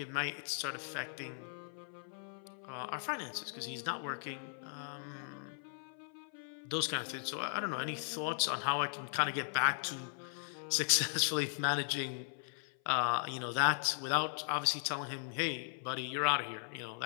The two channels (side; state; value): right; silent; 53 dB below the other